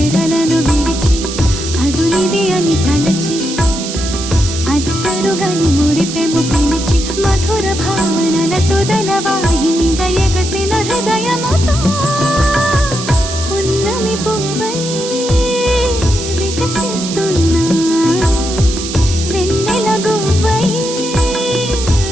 విడిచి అదునిది అని తలచి అదు పెరుగని మురిపెము పిలిచి మధుర భావనల సుదల వాహినిగా ఎగసిన హృదయముతో పున్నమి పువ్వై వికసిస్తున్నా వెన్నెల గువ్వై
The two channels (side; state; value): right; noise; hiss, 8 dB below the sound